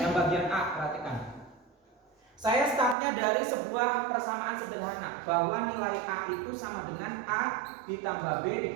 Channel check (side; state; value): left; drops out; at 3.0 s